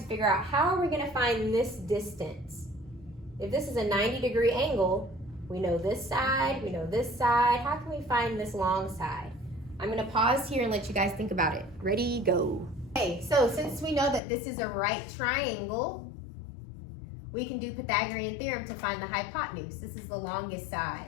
figure out how are we gonna find this distance? If this is a 90-degree angle, we know this side, we know this side. How can we find this long side? I'm gonna pause here and let you guys think about it. Ready, go. Okay, so since we know that this is a right triangle, we can do Pythagorean theorem to find the hypotenuse. This is the longest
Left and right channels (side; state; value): right; drops out; at 14.2 s